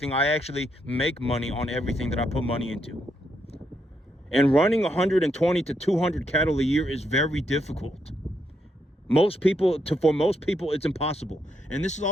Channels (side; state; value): both; normal; correlation 0.78